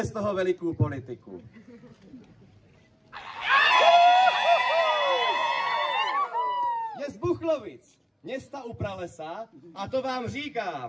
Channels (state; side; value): identical; both; correlation 1.00